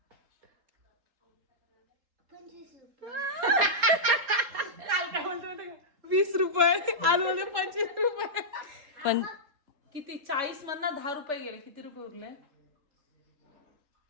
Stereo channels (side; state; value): left; late; 3.8 ms